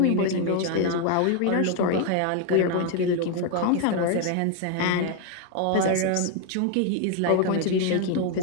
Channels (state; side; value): different; both; correlation 0.01